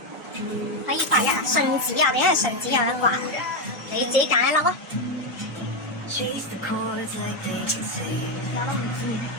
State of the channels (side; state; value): both; normal; correlation 0.06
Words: 可以刮一啊！順子啊，我哋因為順子有得刮，你自己揀一粒啊！